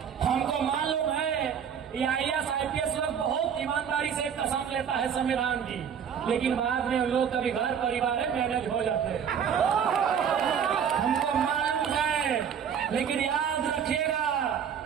हमको मालूम है ये IAS IPS लोग बहुत ईमानदारी से कसम लेता है संविधान की, लेकिन बाद में लोग कभी घर परिवार में मैनेज हो जाते हैं। हमको मालूम है, लेकिन याद रखिएगा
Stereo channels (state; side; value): quieter; left; 7.8 dB